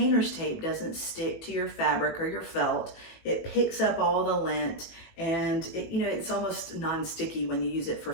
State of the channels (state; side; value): late; right; 19 ms